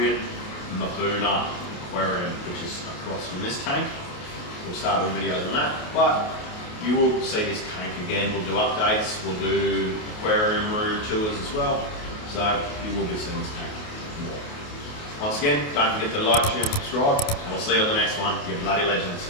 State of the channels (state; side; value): late; right; 28 ms